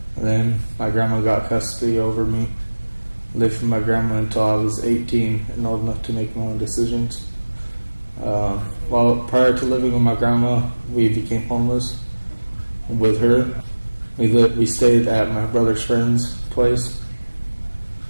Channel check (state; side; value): inverted; both; correlation -1.00